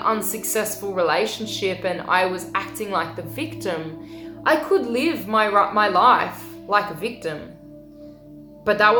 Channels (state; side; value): identical; both; correlation 1.00